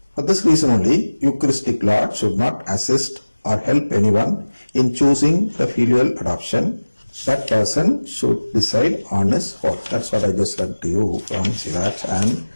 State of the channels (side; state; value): both; inverted; correlation -1.00